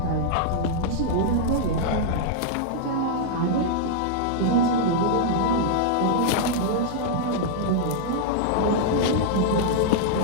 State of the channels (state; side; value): different; both; correlation -0.01